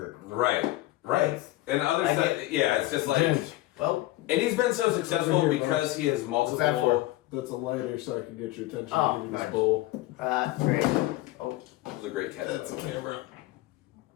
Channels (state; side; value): quieter; right; 17.3 dB